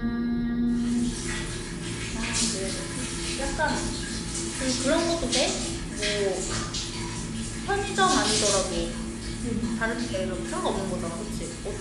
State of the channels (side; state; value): both; identical; correlation 1.00